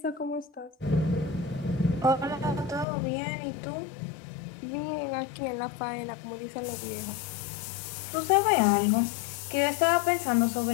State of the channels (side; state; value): right; drops out; at 2.9 s